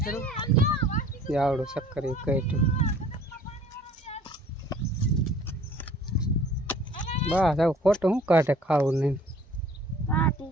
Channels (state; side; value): normal; both; correlation 0.52